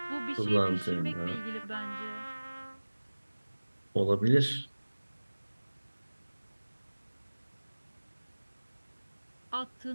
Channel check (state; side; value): inverted; both; correlation -1.00